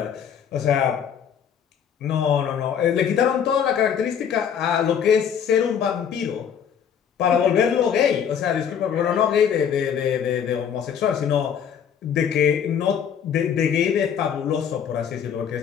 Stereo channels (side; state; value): right; quieter; 8.1 dB